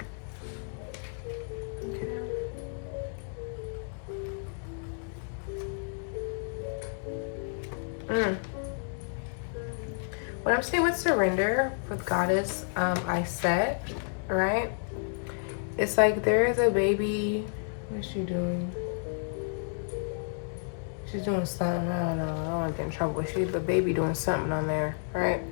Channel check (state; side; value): silent; right; digital silence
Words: Okay. What I'm saying with surrender, with Goddess, I set, right? It's like there is a baby. What's she doing? She's doing something. I don't know. I don't want to get in trouble. But she's the baby doing something on there, right?